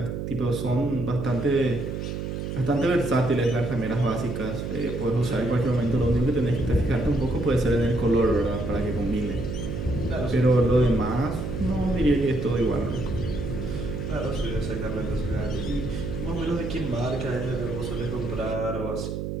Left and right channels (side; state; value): right; noise; hum, 4 dB below the sound